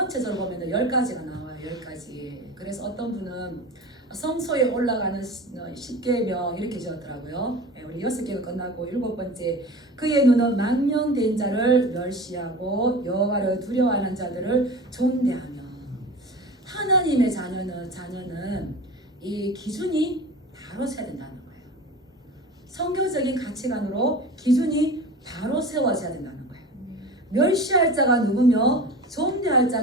보면 10가지가 나와요. 10가지. 그래서 어떤 분은 성소에 올라가는 10계명 이렇게 지었더라고요. 우리 6개가 끝나고 7번째 그의 눈은 망령된 자를 멸시하고 여호와를 두려워하는 자들을 존대하며. 하나님의 자녀는 이 기준이 바로 세야 된다는 거예요. 성경적인 가치관으로 기준이 바로 세워져야 된다는 거예요. 멸시할 자가 누구며 존대할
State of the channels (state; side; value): normal; both; correlation 0.34